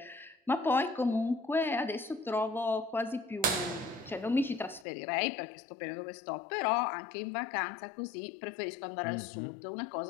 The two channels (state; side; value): drops out; right; at 4.9 s